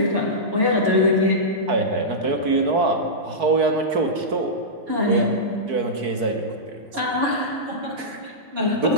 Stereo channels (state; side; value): late; left; 4.6 ms